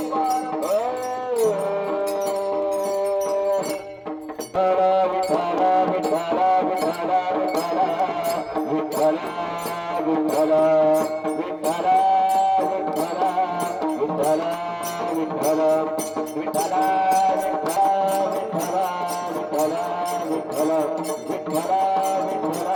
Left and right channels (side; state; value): both; identical; correlation 1.00